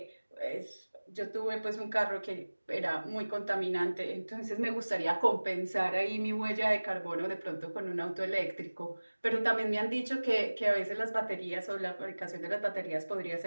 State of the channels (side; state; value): both; inverted; correlation -1.00